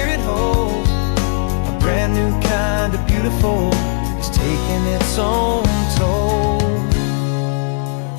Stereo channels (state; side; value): silent; right; 68 dB below the other